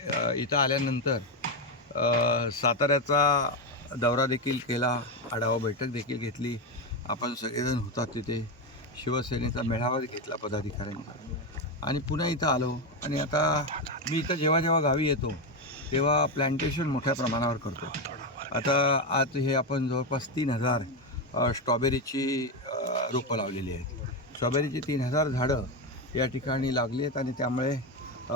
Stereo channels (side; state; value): both; normal; correlation 0.10